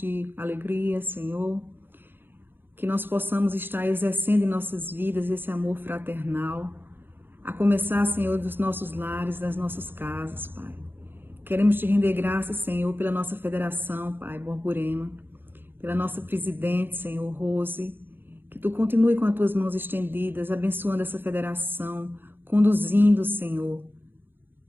alegria, Senhor. Que nós possamos estar exercendo em nossas vidas esse amor fraternal, a começar, Senhor, dos nossos lares, das nossas casas, Pai. Queremos te render graças, Senhor, pela nossa federação, Pai, Borborema, pela nossa presidente, Senhor, Rose, que tu continue com as tuas mãos estendidas, abençoando essa federação, conduzindo, Senhor.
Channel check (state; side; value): late; left; 0.099 ms